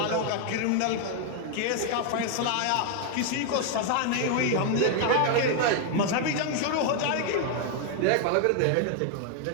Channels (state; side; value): different; both; correlation 0.00